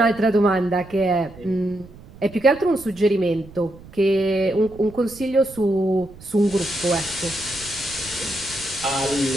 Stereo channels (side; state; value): right; noise; rumble, 20 dB below the sound